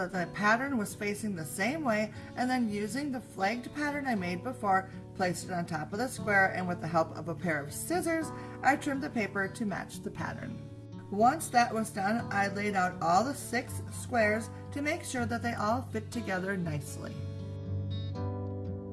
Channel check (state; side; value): identical; both; correlation 1.00